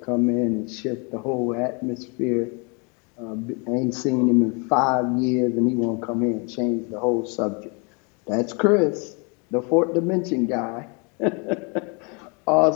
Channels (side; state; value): right; quieter; 33.3 dB